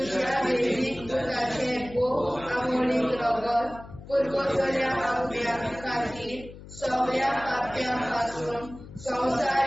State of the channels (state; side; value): noise; left; hum, 16 dB below the sound